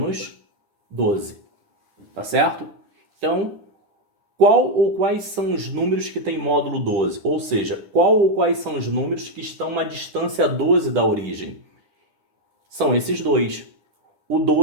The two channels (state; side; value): late; left; 9.9 ms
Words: 12, tá certo? Então, qual ou quais são os números que têm módulo 12? Ou seja, qual ou quais são os números que estão a distância 12 da origem? São esses dois. O